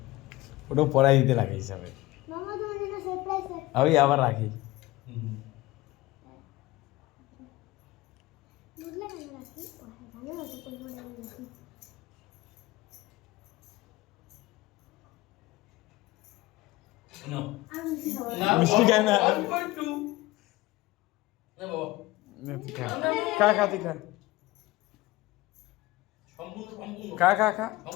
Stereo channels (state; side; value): quieter; right; 19.0 dB